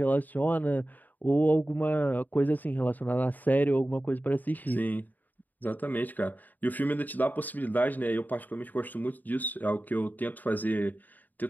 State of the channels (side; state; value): right; late; 0.084 ms